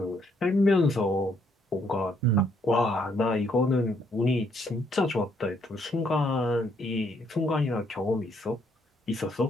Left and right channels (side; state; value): both; normal; correlation 0.70